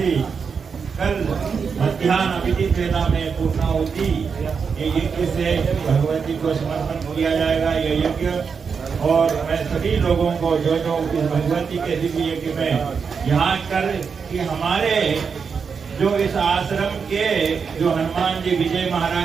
कल मध्याह्न अभिजीत वेला में पूर्णाहुति ये यज्ञ से भगवती को समर्पण किया जाएगा। ये यज्ञ और मैं सभी लोगों को जो जो इस भगवती के दिव्य यज्ञ में यहाँ कर कि हमारे जो इस आश्रम के जो हनुमान जी विजय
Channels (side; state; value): left; quieter; 5.9 dB